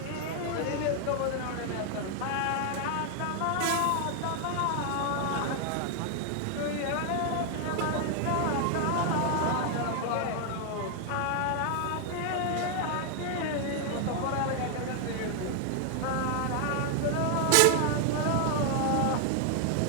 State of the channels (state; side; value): different; both; correlation 0.00